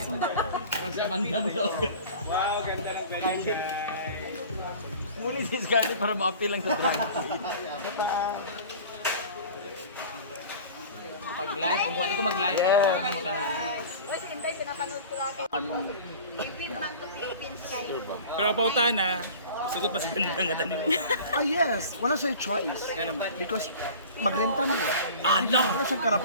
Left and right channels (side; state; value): both; inverted; correlation -0.40